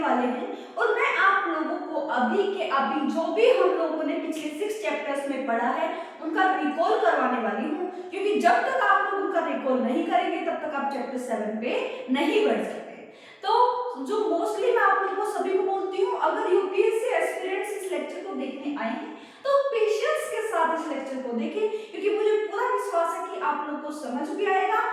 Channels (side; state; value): both; identical; correlation 1.00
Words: वाले हैं और मैं आप लोगों को अभी जो भी हम लोगों ने पिछले 6 चैप्टर्स में पढ़ा है उनका रिकॉल करवाने वाली हूँ, क्योंकि जब तक आप लोग उनका रिकॉल नहीं करेंगे तब तक आप चैप्टर 7 पे नहीं बढ़ सकते। तो जो मोस्टली मैं आप लोगों को सभी को बोलती हूँ, अगर यूपीएससी एस्पिरेंट्स इस लेक्चर को देखने आए हैं तो पेशेंस के साथ इस लेक्चर को देखें, क्योंकि मुझे पूरा विश्वास है कि आप लोग को समझ भी आएगा